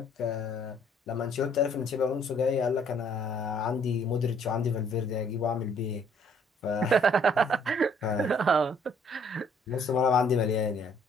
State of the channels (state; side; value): normal; both; correlation 0.62